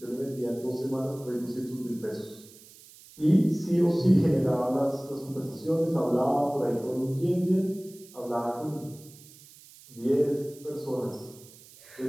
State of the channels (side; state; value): right; noise; hiss, 22 dB below the sound